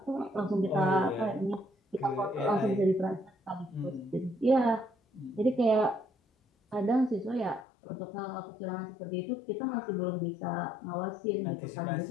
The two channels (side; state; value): right; drops out; at 7.7 s